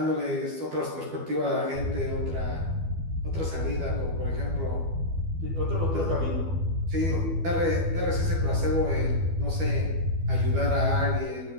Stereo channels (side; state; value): left; late; 12 ms